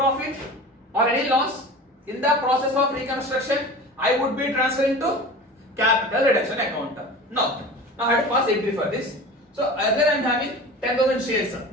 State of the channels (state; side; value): normal; both; correlation 0.35